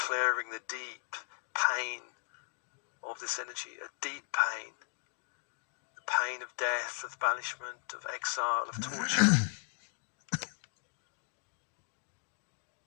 the deep pain of this energy, a deep pain, the pain of death, of banishment, of exile, of torture.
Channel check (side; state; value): right; silent; digital silence